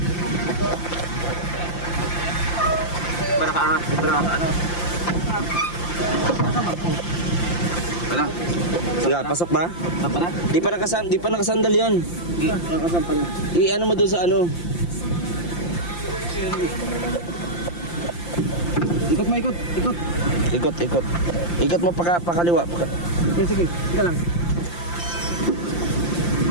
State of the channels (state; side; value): late; right; 5.8 ms